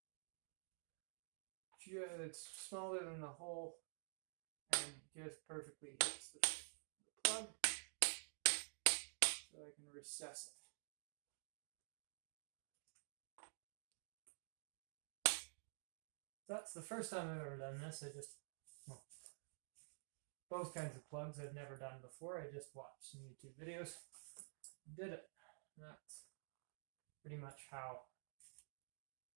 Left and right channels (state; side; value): silent; left; digital silence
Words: smaller than the hole and just perfectly hits the plug so I can recess it. That's the first time I've ever done this. Both kinds of plugs I've never done before. I just watched some YouTube videos, did it. That's pretty much how